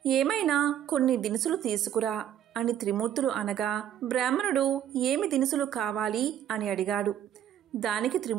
ఏమైనా కొన్ని దినుసులు తీసుకురా అని త్రిమూర్తులు అనగా బ్రాహ్మణుడు ఏమి దినుసులు కావాలి అని అడిగాడు. దానికి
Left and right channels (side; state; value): left; quieter; 10.4 dB